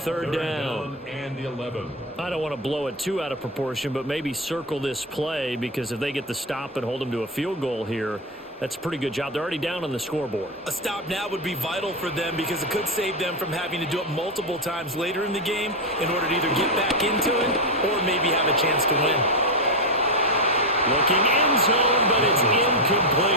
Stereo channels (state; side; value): normal; both; correlation 0.10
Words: down. And 11. I don't want to blow it too out of proportion, but maybe circle this play, because if they get the stop and hold them to a field goal here, that's a pretty good job. They're already down on the scoreboard. A stop now would be vital for them, because it could save them from having to do it multiple times later in the game in order to either get back into it or maybe have a chance to win. Looking end zone, but it's